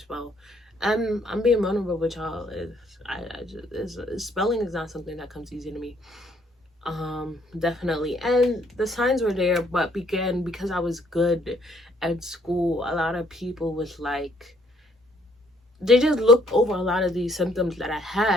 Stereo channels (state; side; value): normal; both; correlation 0.66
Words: I'm being vulnerable with y'all. Spelling is not something that comes easy to me. Definitely. And the signs were there, but again, because I was good at school, a lot of people was like, they just looked over a lot of these symptoms that I